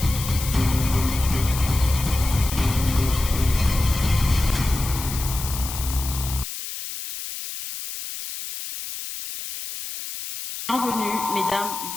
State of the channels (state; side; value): noise; left; hiss, 8 dB below the sound